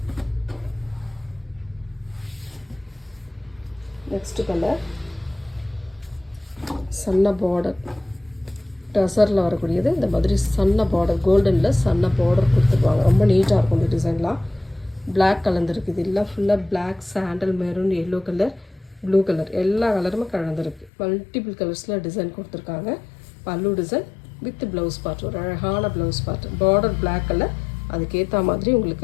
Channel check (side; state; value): right; drops out; at 20.9 s